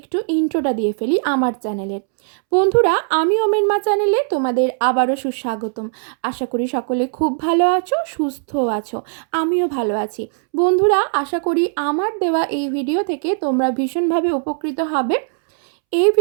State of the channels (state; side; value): silent; left; 66 dB below the other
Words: ইন্ট্রোটা দিয়ে ফেলি আমার চ্যানেলের। বন্ধুরা, আমি ওমেন মা চ্যানেলে তোমাদের আবারও সুস্বাগতম। আশা করি সকলে খুব ভালো আছো, সুস্থ আছো, আমিও ভালো আছি। বন্ধুরা, আশা করি আমার দেওয়া এই ভিডিও থেকে তোমরা ভীষণভাবে উপকৃত হবে। এই